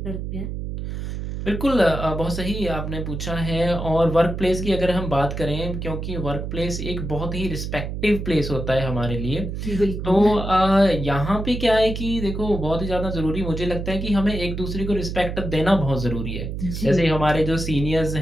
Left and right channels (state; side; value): noise; right; hum, 5 dB below the sound